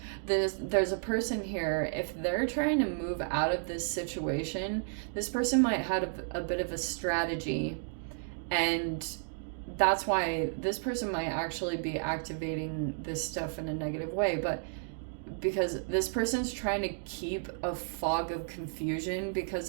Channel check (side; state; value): left; silent; digital silence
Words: There's a person here, if they're trying to move out of this situation, this person might have a bit of a strategy, and that's why this person might actually be activating this stuff in a negative way. But because this person's trying to keep a fog of confusion, because